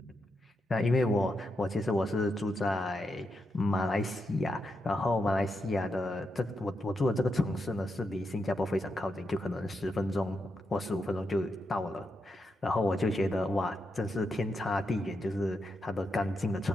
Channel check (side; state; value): both; normal; correlation 0.84